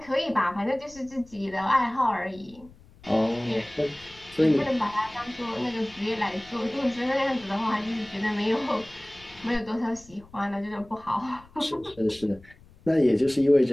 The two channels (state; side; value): noise; left; rumble, 24 dB below the sound